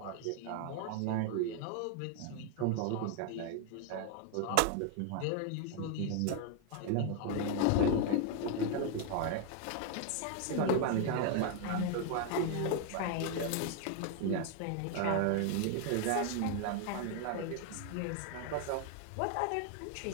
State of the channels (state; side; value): different; both; correlation 0.00